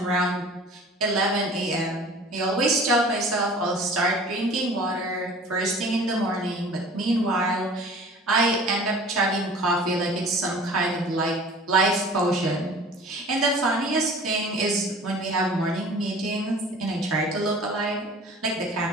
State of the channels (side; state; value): both; normal; correlation 0.45